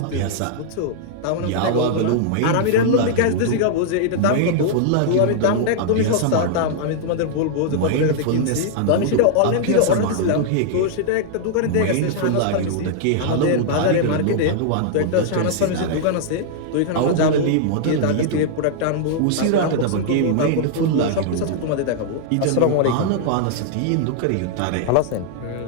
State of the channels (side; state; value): both; different; correlation -0.01